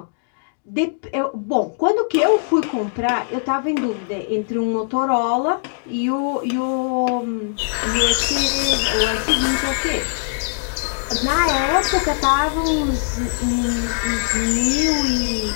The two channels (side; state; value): right; silent; digital silence